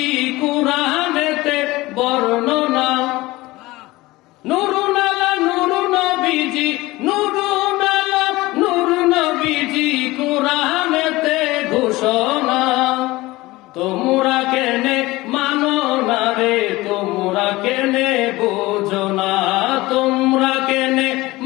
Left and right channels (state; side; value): quieter; right; 19.8 dB